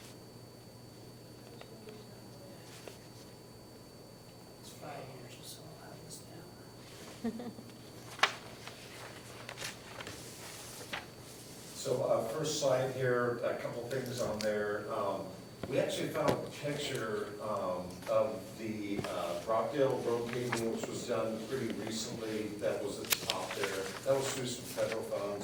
5 years or so, I'll have this down. So, first slide here, a couple things on there. We actually found a picture of the Rockdale Road paving, which was done pretty recently, that was at the top there. That was through some federal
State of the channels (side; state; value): both; identical; correlation 1.00